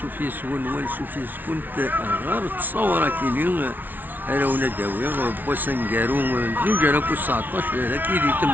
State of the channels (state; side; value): late; left; 0.086 ms